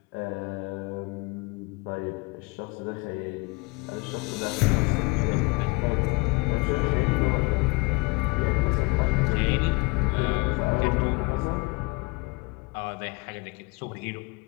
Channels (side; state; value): right; quieter; 27.2 dB